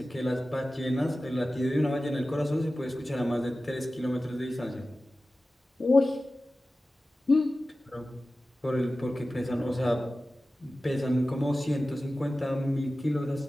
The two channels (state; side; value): normal; both; correlation 0.95